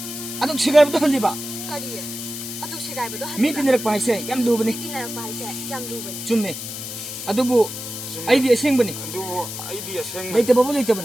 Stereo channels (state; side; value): noise; left; hiss, 8 dB below the sound